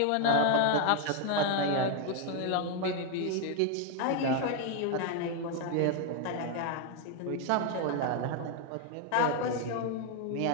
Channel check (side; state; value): both; different; correlation 0.01